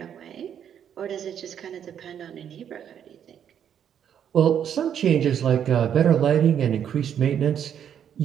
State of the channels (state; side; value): quieter; left; 9.0 dB